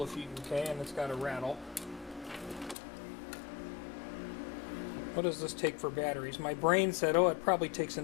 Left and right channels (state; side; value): drops out; right; at 2.8 s